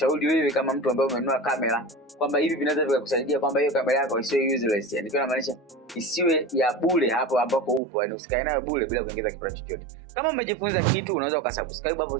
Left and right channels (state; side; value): drops out; left; at 7.8 s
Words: wewe kama mtu ambaye umenunua kamera, kwamba hivi vinaweza vikakusaidia kwamba hiyo kamera yako isiwe useless. Yani kwa maanisha isiwe ya bure hapo ambapo upo, yani usikae nayo bure bila kuongeza kipato chochote. Kama umejifunza kitu, unaweza ukasubscribe hapo